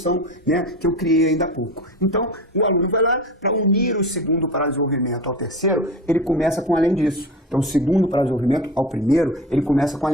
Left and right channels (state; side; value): normal; both; correlation 0.30